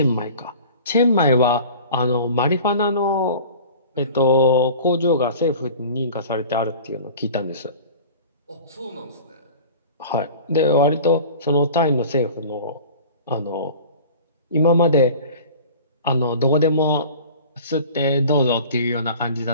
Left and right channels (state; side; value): inverted; both; correlation -0.41